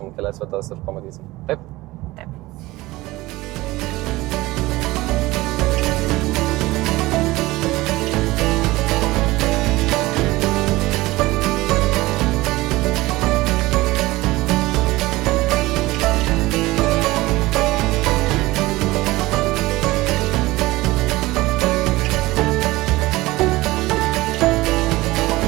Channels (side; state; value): left; quieter; 19.4 dB